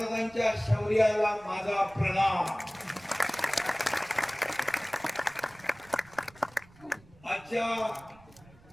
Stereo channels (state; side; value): noise; right; rumble, 25 dB below the sound